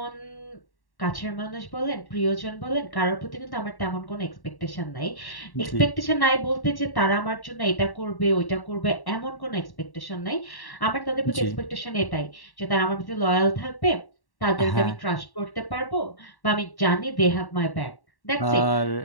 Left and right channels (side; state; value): right; late; 1.1 ms